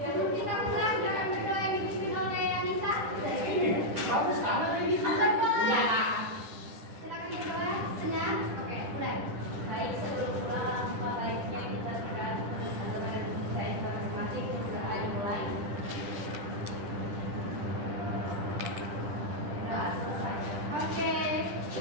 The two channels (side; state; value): left; late; 10 ms